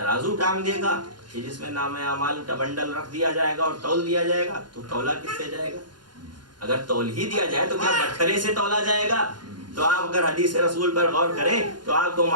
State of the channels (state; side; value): late; left; 0.71 ms